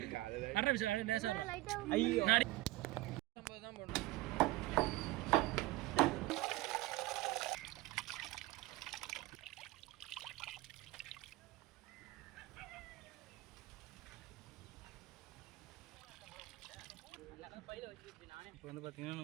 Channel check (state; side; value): quieter; left; 18.7 dB